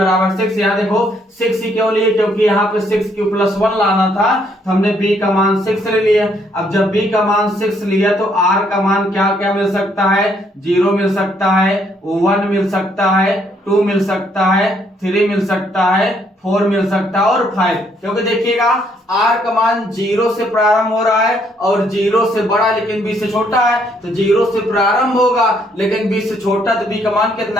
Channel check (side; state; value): both; normal; correlation 0.69